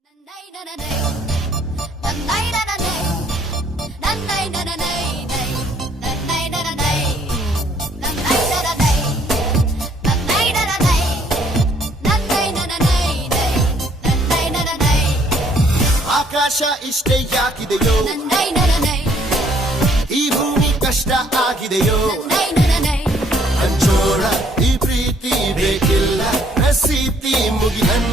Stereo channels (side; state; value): both; normal; correlation 0.64